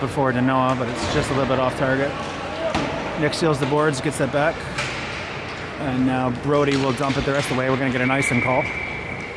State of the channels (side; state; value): both; identical; correlation 1.00